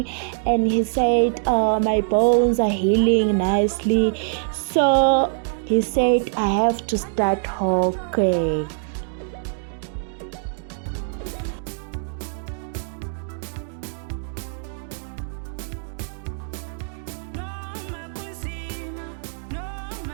and he said my bones are healing nicely. So he said I have to start walking.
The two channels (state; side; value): silent; left; digital silence